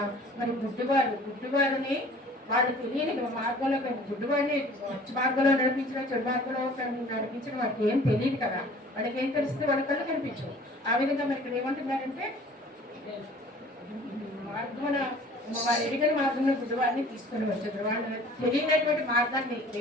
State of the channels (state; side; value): normal; both; correlation 0.49